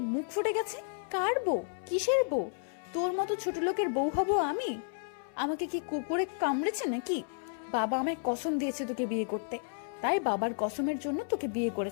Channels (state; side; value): silent; right; 56 dB below the other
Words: মুখ ফুটে গেছে। কার বউ? কিসের বউ? তোর মতো ছোট লোকের বউ হব আমি? আমাকে কি কুকুরে কামড়েছে নাকি? বাবা আমায় কসম দিয়েছে তোকে বিয়ে করতে, তাই বাবার কসমের জন্য তোকে বিয়ে